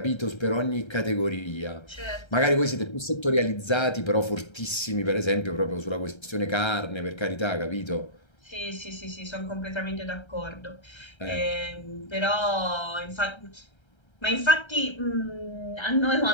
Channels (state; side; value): late; right; 1.3 ms